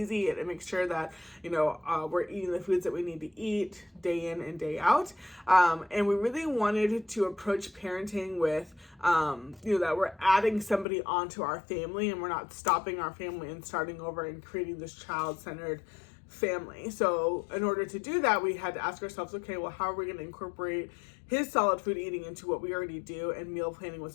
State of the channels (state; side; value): drops out; right; at 10.9 s